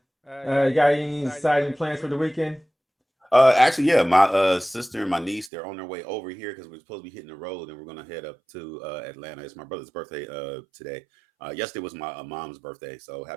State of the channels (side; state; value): left; drops out; at 5.5 s